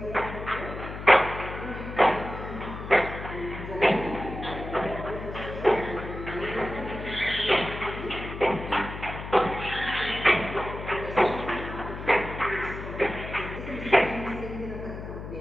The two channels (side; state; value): left; noise; hum, 9 dB below the sound